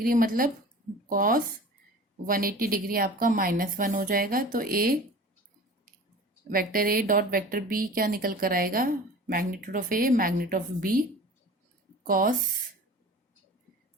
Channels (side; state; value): both; normal; correlation 0.40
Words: मतलब कॉस 180 डिग्री आपका -1 हो जाएगा। तो A vector A dot vector B क्या निकल कर आएगा, magnitude of A magnitude of B cos